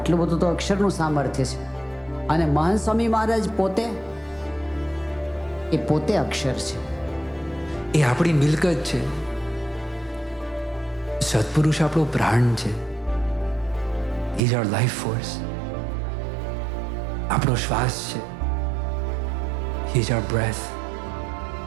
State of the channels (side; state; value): left; drops out; at 14.4 s